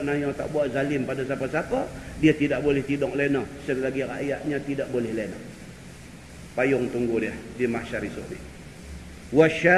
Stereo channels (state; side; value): identical; both; correlation 1.00